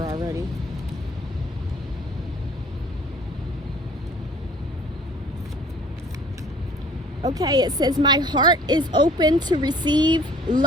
already. Okay, it says, my heart is open to receive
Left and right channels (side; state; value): both; normal; correlation 0.51